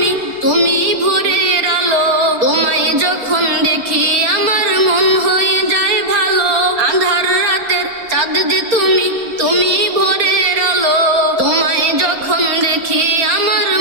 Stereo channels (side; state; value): left; late; 4.3 ms